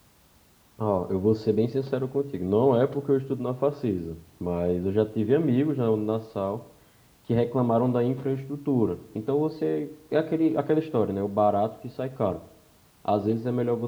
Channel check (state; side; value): identical; both; correlation 1.00